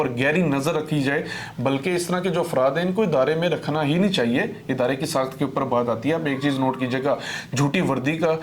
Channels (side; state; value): both; identical; correlation 1.00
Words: گہری نظر رکھی جائے، بلکہ اس طرح کے جو افراد ہیں ان کو ادارے میں رکھنا ہی نہیں چاہیے. ادارے کی ساخت کے اوپر بات آتی ہے. ایک چیز نوٹ کیجئے گا، جھوٹی وردی کا